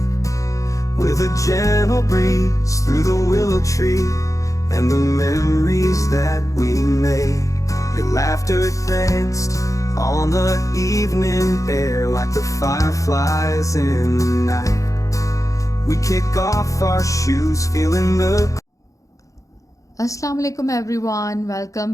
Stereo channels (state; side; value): late; right; 0.16 ms